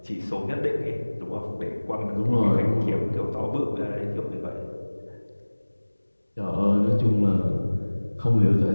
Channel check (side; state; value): both; inverted; correlation -1.00